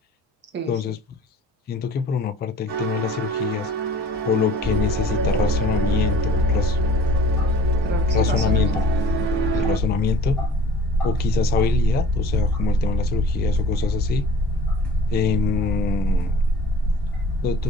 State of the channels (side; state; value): both; normal; correlation 0.47